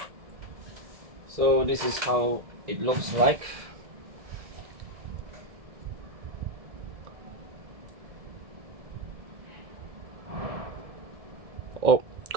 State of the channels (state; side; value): late; left; 1.7 ms